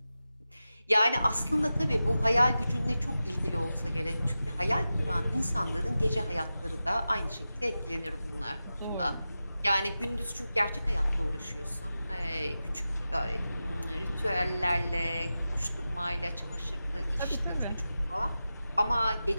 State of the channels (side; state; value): both; inverted; correlation -0.93